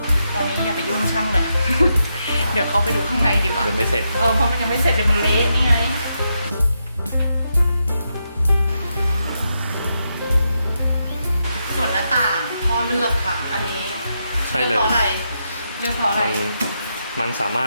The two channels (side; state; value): both; inverted; correlation -0.83